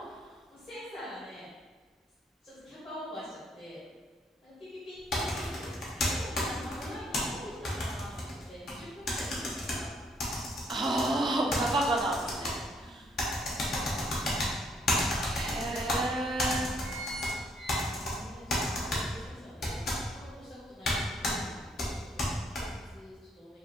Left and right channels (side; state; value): both; normal; correlation 0.68